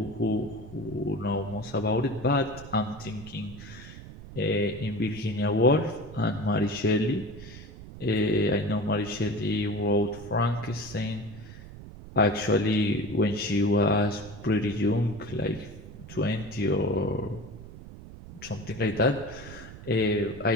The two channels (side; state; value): right; noise; rumble, 15 dB below the sound